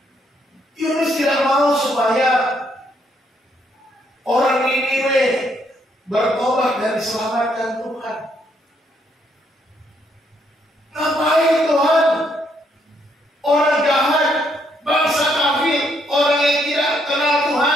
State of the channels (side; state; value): both; normal; correlation 0.73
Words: Yunus tidak mau supaya orang Niniwe bertobat dan diselamatkan Tuhan. Ngapain Tuhan? Orang jahat, bangsa kafir, orang yang tidak kenal